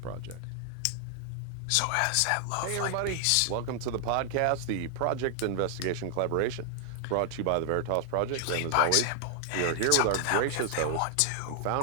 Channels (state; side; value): different; both; correlation 0.00